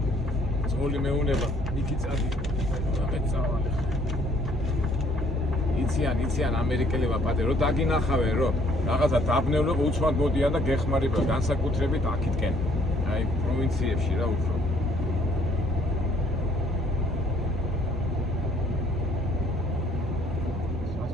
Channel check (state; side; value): normal; both; correlation 0.62